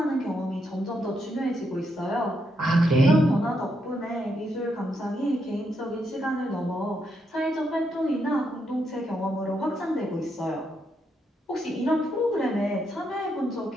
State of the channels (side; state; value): both; normal; correlation 0.79